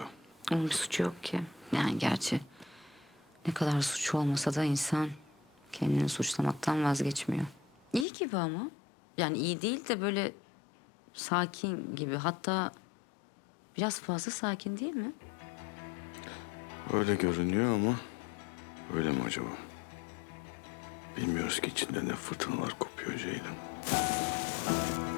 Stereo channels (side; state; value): right; drops out; at 8.1 s